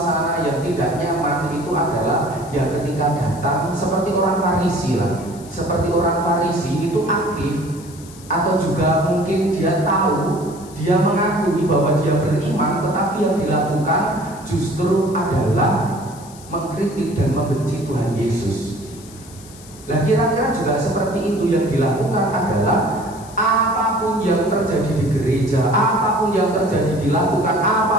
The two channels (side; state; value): left; noise; hiss, 20 dB below the sound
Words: yang tidak nyaman itu adalah ya ketika datang seperti orang Farisi lah. Seperti orang Farisi itu aktif, atau juga mungkin dia tahu, dia mengakui bahwa dia beriman, tetapi yang dilakukan justru adalah mengkritik dan membenci Tuhan Yesus. Nah kira-kira juga seperti itu yang dilakukan adalah apapun yang terjadi di gereja, apapun yang terjadi dilakukan,